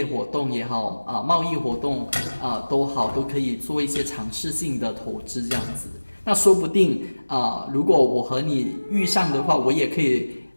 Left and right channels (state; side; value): inverted; both; correlation -1.00